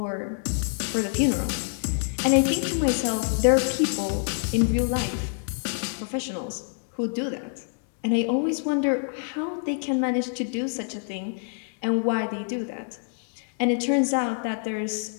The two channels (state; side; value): silent; right; digital silence